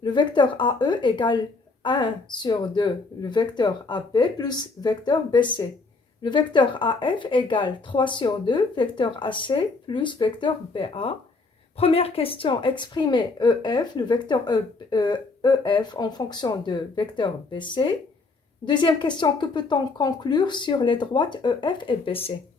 Le vecteur AE égale 1 sur 2, le vecteur AP plus vecteur BC. Le vecteur AF égale 3 sur 2, vecteur AC plus vecteur BA. Première question, exprimer EF, le vecteur EF en fonction de vecteur BC. Deuxième question, que peut-on conclure sur les droites EF et BC?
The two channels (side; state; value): right; quieter; 3.8 dB